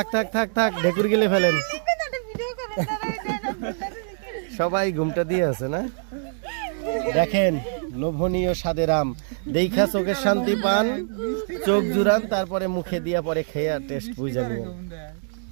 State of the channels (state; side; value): silent; left; digital silence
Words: থাক থাক থাক, ঢেকুর গেলে ফেলেন। সবাই ঘুমটা দিয়ে আছে না? দেখেন লোভনীয় স্বাদের আম, দেখা চোখের শান্তি পান, চোখ জুড়ান, তারপরে মুখে দিয়া পরে খেয়ে টেস্ট বুঝা নিয়ে।